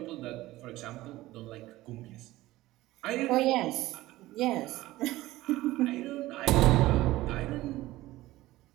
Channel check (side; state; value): left; quieter; 17.3 dB